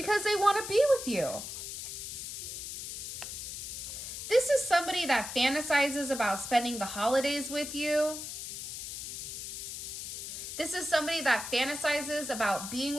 they want to be with you. This is somebody that fantasizes about spending the holidays with you. This is somebody that fantasizes about being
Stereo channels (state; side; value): noise; left; hiss, 7 dB below the sound